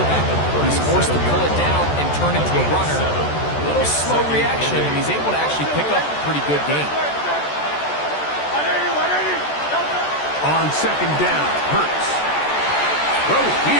He's forced to pull it down and turn into a runner. A little slow reaction, and he's able to actually pick up a pretty good game. On 2nd down, Hurts. Throw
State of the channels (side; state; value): right; late; 14 ms